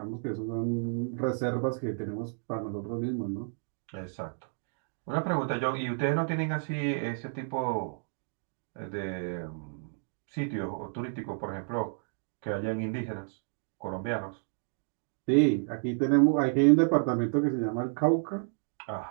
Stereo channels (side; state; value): left; silent; digital silence